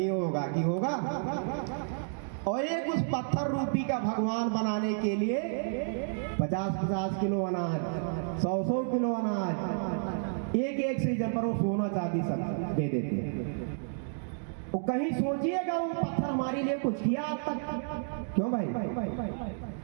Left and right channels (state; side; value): silent; left; digital silence